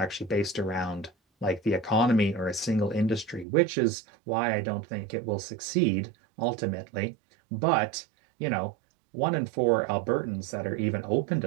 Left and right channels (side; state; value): left; drops out; at 3.5 s